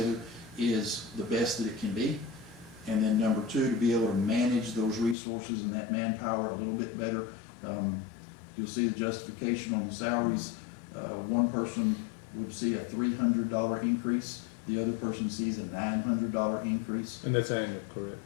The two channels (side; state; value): right; drops out; at 5.2 s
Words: is the best that it can be. And then number 2, to be able to manage those resources and that manpower a little bit better. you'll see the justification on the salaries. One person would see a $300 increase, the other person sees a $900 increase. And that's annual, correct?